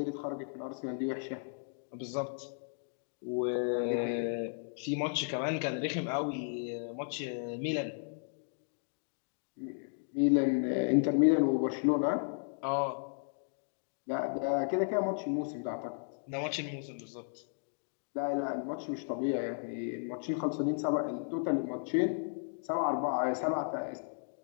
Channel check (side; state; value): right; silent; digital silence